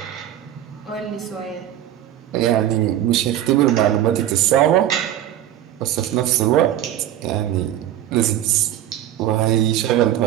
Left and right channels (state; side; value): quieter; left; 11.9 dB